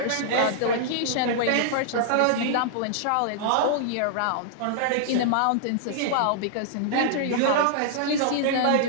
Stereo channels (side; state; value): both; different; correlation -0.01